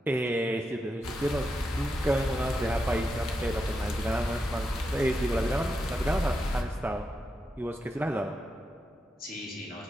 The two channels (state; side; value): normal; both; correlation 0.86